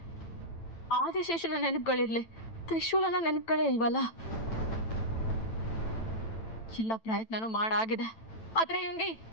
ಆದಿಶೇಷನ ನೆನಪುಗಳಿರ್ಲಿ, ತ್ರಿಶೂಲನ ನೆನಪುಗಳೇ ಇಲ್ವಲ್ಲ. ಎಲ್ಲ ಪ್ರಯತ್ನನೂ ಮಾಡಾಗಿದೆ, ಆದ್ರೆ ಇವನ್ಗೆ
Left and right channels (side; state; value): right; late; 9.0 ms